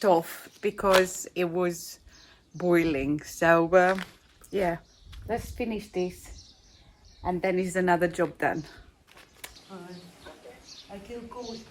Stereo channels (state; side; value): identical; both; correlation 1.00